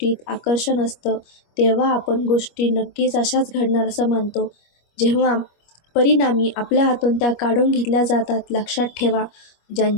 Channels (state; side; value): late; right; 25 ms